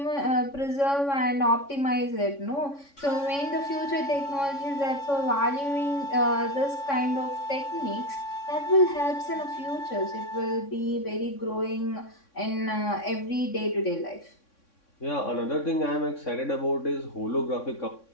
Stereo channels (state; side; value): late; right; 3.6 ms